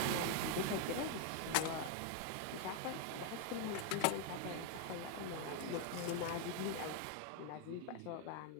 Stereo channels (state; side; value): different; both; correlation 0.00